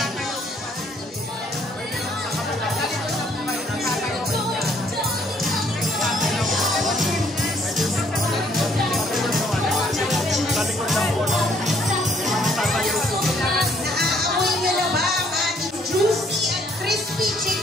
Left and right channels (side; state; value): both; normal; correlation 0.65